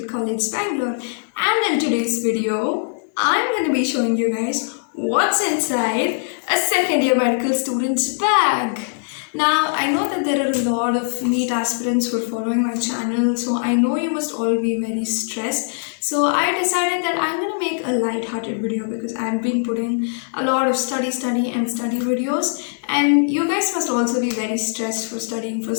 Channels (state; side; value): silent; right; 65 dB below the other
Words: College, Bangalore, and in today's video, I'm going to be showing you guys what's inside a second year medical student's bag. Now, I know that there are a lot of NEET aspirants who are following my channel, so I know you must all be very stressed. So I decided that I'm going to make a light-hearted video because I've been putting a lot of study videos, and you guys must also be very stressed for studying for